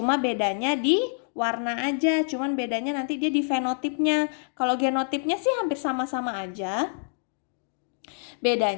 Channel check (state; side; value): silent; right; digital silence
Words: bedanya di warna aja, cuman bedanya nanti dia di fenotipnya. Kalau genotipnya sih hampir sama-sama aja.